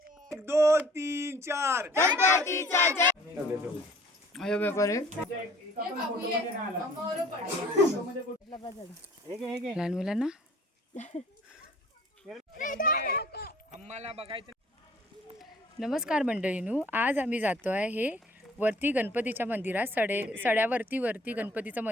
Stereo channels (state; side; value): normal; both; correlation 0.54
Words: 1 2 3 4 गणपतीचा जय. अयो बेपारे लहान मुलांना नमस्कार मंडळीनू. आज आम्ही जातो आहे हे वरती गणपतीच्या मंदिरात. सड्यावरती गणपतीचं